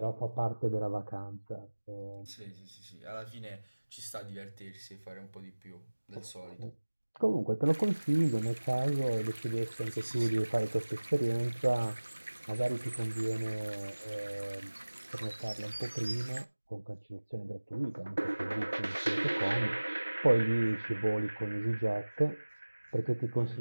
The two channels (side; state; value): both; inverted; correlation -1.00